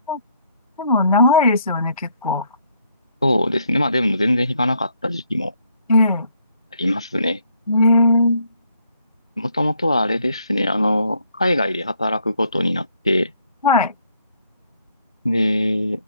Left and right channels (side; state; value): both; inverted; correlation -0.69